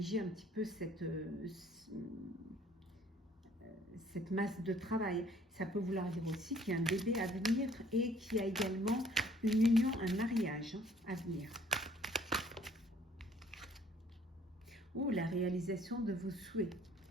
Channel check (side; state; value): both; normal; correlation 0.58